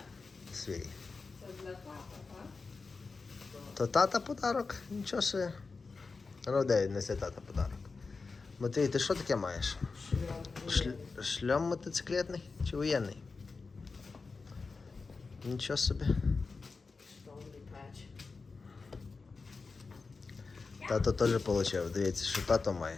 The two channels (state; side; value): quieter; right; 4.3 dB